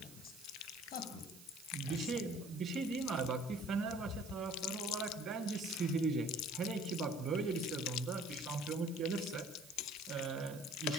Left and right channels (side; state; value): right; noise; hiss, 18 dB below the sound